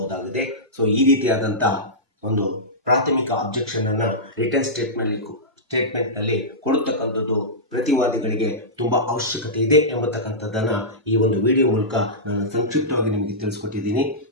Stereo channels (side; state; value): both; normal; correlation -0.15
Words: ಸೊ ಈ ರೀತಿಯಾದಂತಹ ಒಂದು ಪ್ರಾಥಮಿಕ ಅಬ್ಜೆಕ್ಷನ್ ಅನ್ನ ರಿಟರ್ನ್ ಸ್ಟೇಟ್ಮೆಂಟ್ ನಲ್ಲಿ ಕೊಡತಕ್ಕಂಥದ್ದು ಪ್ರತಿವಾದಿಗಳಿಗೆ ತುಂಬಾ ಅವಶ್ಯಕತೆ ಇದೆ ಎಂಬತಕ್ಕಂಥದ್ದನ್ನ ಈ ಒಂದು ವಿಡಿಯೋ ಮೂಲಕ ನಾನು ಸಂಕ್ಷಿಪ್ತವಾಗಿ ನಿಮಗೆ ತಿಳಿಸ್ಕೊಟ್ಟಿದ್ದೀನಿ.